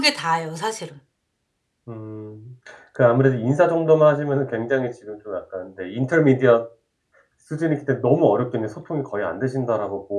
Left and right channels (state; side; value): identical; both; correlation 1.00